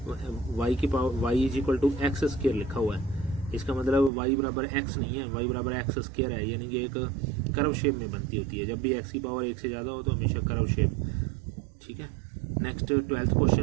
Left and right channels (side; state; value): left; drops out; at 4.1 s